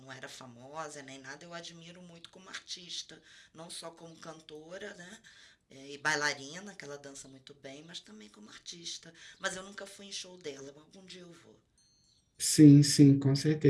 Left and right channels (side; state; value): both; identical; correlation 1.00